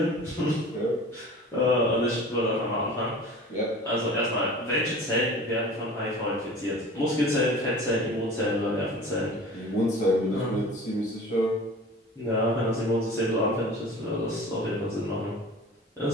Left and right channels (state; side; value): normal; both; correlation 0.40